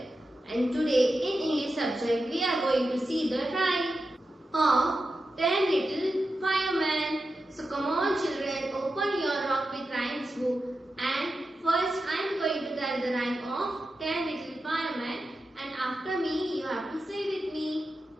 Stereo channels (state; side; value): normal; both; correlation 0.90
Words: And today in English subject we are going to see the rhyme of 10 Little Firemen. So come on children, open your Rock with Rhymes book, and first I am going to tell the rhyme of 10 Little Firemen, and after me you have to say with me.